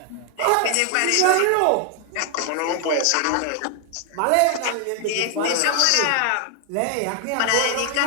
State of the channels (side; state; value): both; different; correlation 0.00